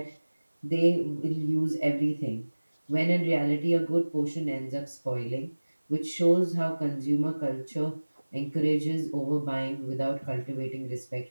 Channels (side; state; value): both; inverted; correlation -1.00